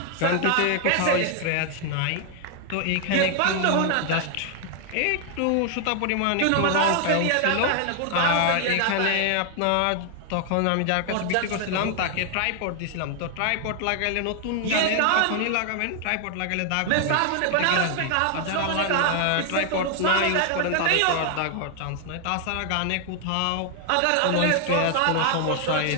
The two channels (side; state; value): both; different; correlation 0.00